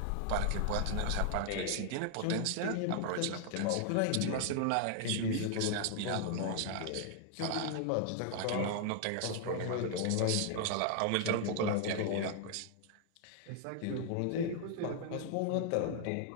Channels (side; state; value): both; different; correlation 0.00